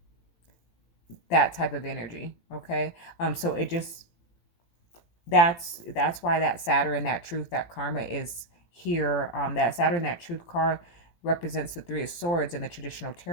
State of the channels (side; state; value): right; late; 18 ms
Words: that type of energy. Okay. So it just, that's why that Saturn, that truth, that karma is here. That Saturn, that truth card represents the Three of Swords in the traditional